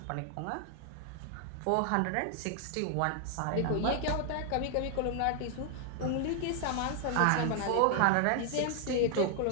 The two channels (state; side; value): different; both; correlation 0.00